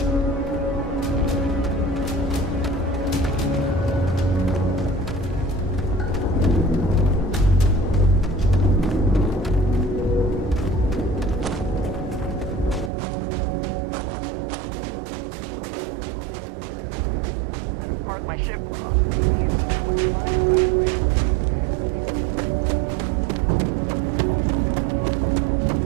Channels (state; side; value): drops out; left; at 12.9 s